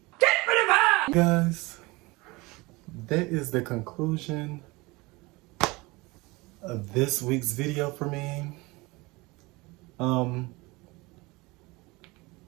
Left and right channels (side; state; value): left; quieter; 23.6 dB